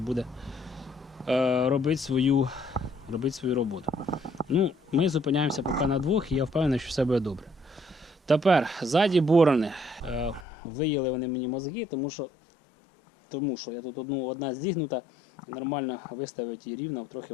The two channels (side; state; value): right; drops out; at 10.5 s